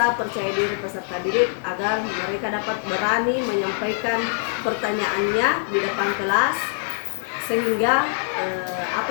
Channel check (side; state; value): right; silent; digital silence